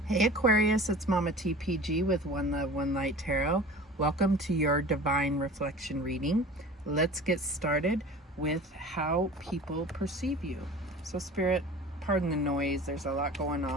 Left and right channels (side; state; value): both; normal; correlation 0.40